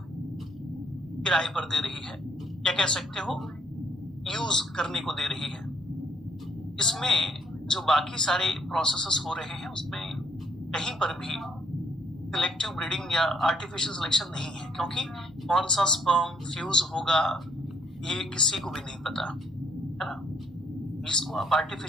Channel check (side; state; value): both; normal; correlation 0.69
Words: किराए पर दे रही है, या कह सकते हो यूज करने को दे रही है। इसमें जो बाकी सारे प्रोसेसेस हो रहे हैं उसमें कहीं पर भी सिलेक्टिव ब्रीडिंग या आर्टिफिशियल सिलेक्शन नहीं है, क्योंकि कौन सा स्पर्म फ्यूज होगा ये किसी को भी नहीं पता, है ना। इसको आप